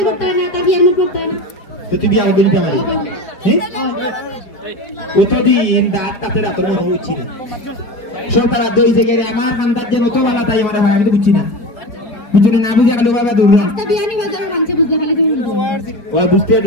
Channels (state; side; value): late; right; 5.1 ms